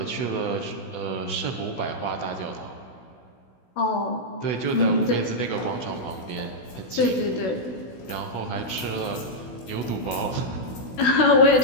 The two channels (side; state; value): right; late; 16 ms